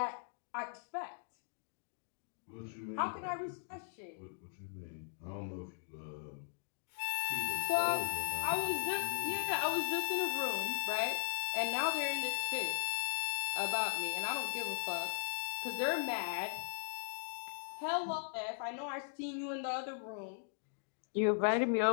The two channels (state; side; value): silent; right; digital silence